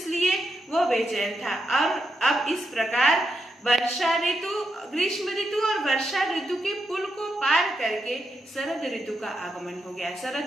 वो बेचैन था। और अब इस प्रकार वर्षा ऋतु, ग्रीष्म ऋतु और वर्षा ऋतु के पुल को पार करके शरद ऋतु का आगमन हो गया।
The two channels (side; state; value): both; normal; correlation 0.83